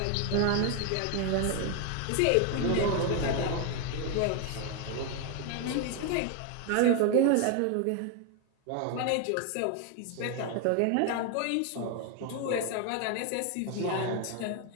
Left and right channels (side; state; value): both; different; correlation 0.01